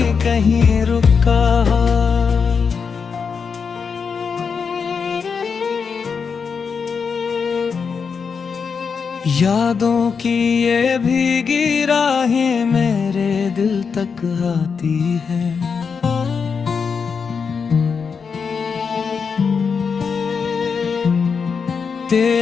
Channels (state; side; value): quieter; right; 5.8 dB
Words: कहीं रुका। यादों की ये भीगी राहें मेरे दिल तक आती है।